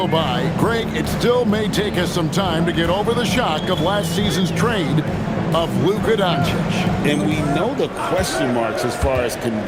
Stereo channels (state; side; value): identical; both; correlation 1.00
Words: by, Greg, it still may take us some time to get over the shock of last season's trade of Luka Doncic. And we know the question marks as far as